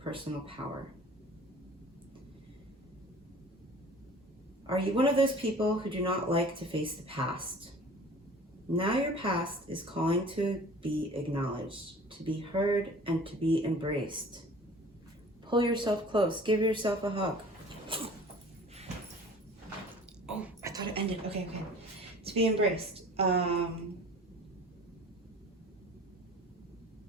personal power. Are you one of those people who do not like to face the past? Now your past is calling to be acknowledged, to be heard, and to be embraced. Pull yourself close. Give yourself a hug. Oh, I thought it ended. Okay. To be embraced.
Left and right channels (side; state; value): both; normal; correlation 0.45